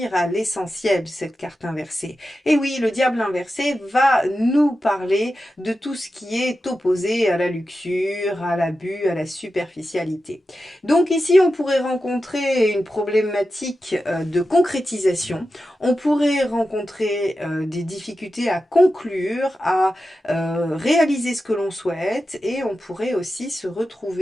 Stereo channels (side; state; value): both; normal; correlation 0.91